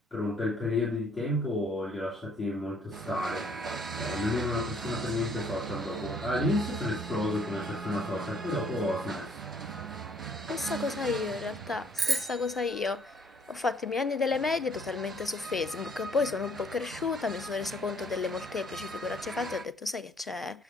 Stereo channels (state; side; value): normal; both; correlation 0.61